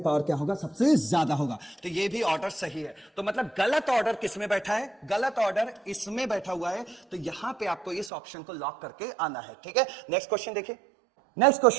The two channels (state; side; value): drops out; left; at 8.1 s